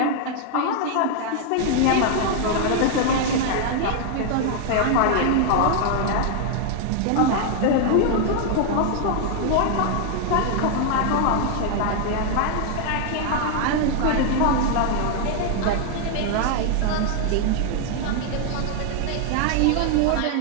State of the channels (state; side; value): different; both; correlation 0.00